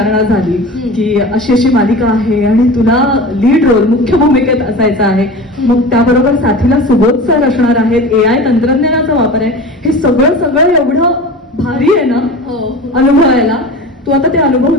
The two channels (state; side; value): normal; both; correlation 0.34